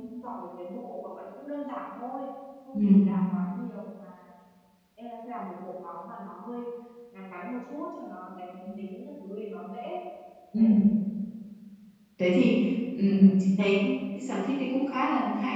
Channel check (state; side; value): identical; both; correlation 1.00